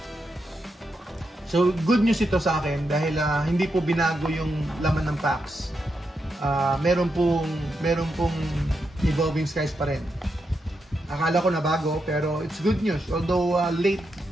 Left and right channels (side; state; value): both; normal; correlation 0.84